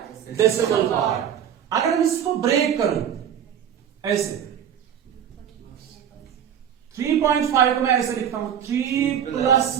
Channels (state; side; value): quieter; left; 9.1 dB